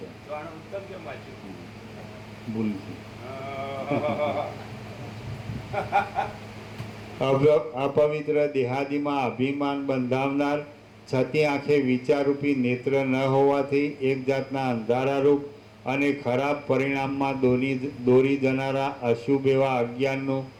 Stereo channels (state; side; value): identical; both; correlation 1.00